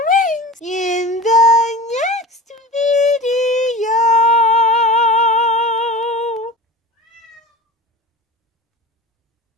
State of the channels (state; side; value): normal; both; correlation 0.34